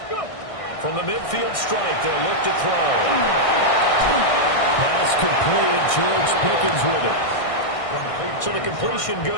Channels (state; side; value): late; right; 1.6 ms